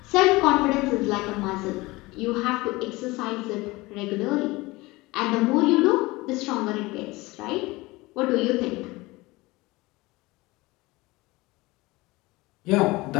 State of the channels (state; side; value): quieter; right; 21.6 dB